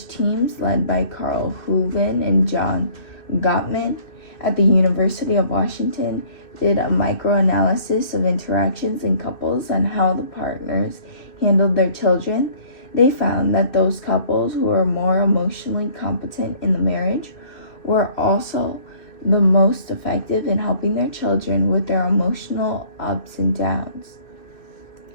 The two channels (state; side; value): late; right; 2.6 ms